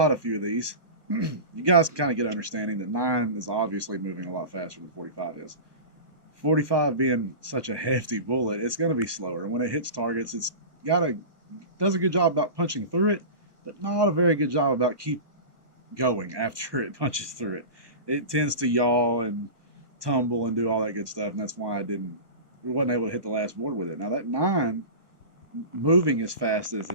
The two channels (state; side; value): late; left; 1.2 ms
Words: a few of these, you guys can kind of get an understanding that 9 is obviously moving a lot faster than 45 is. 45 being such a hefty bullet, it's going to be slower. And when it hits targets, it's does a good job about punching through it, but not a very good job about keep going after it punches through it. It tends to yaw and tumble and do all that good stuff, and that's why we wasn't able to hit the last board with it. Now that 9, moving as fast as